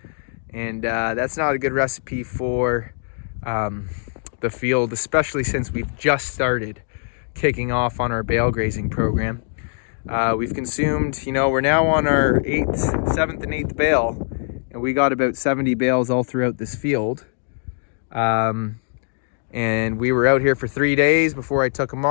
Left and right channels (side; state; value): right; silent; 64 dB below the other